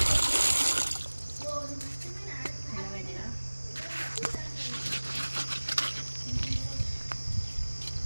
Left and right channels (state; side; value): inverted; both; correlation -1.00